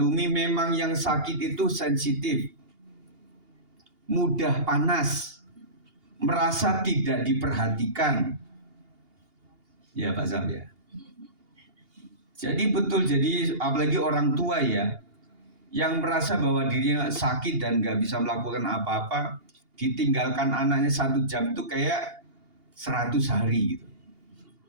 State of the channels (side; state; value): left; late; 2.8 ms